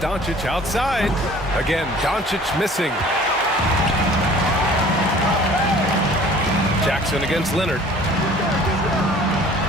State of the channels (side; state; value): both; normal; correlation 0.49